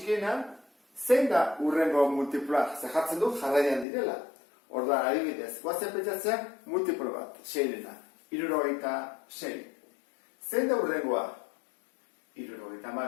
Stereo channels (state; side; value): drops out; right; at 3.9 s